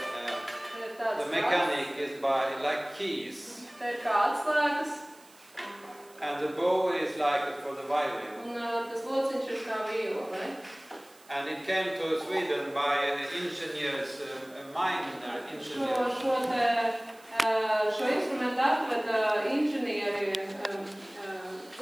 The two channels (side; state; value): right; noise; hiss, 25 dB below the sound